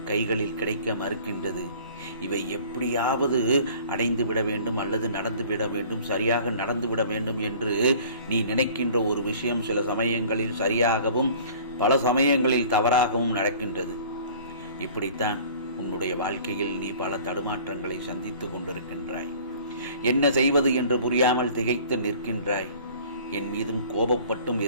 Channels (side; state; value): both; inverted; correlation -0.48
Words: கைகளில் கிடைக்க மறுக்கின்றது. இவை எப்படியாவது அடைந்து விட வேண்டும் அல்லது நடந்து விட வேண்டும், சரியாக நடந்து விட வேண்டும் என்று நீ நினைக்கின்ற ஒரு விஷயம் சில சமயங்களில் சரியாகவும் பல சமயங்களில் தவறாகவும் நடக்கின்றது. இப்படித்தான் உன்னுடைய வாழ்க்கையில் நீ பல தடுமாற்றங்களை சந்தித்து கொண்டிருக்கின்றாய். என்ன செய்வது என்று புரியாமல் திகைத்து நிற்கின்றாய். என் மீதும் கோபப்பட்டும்